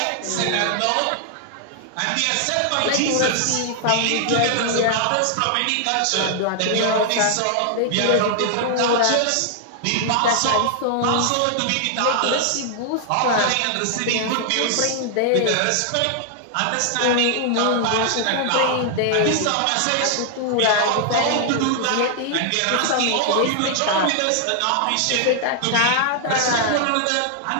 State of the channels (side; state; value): both; different; correlation 0.00